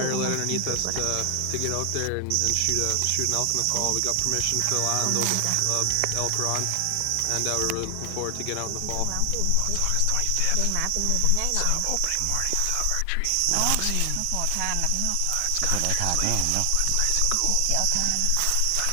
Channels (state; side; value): different; both; correlation 0.00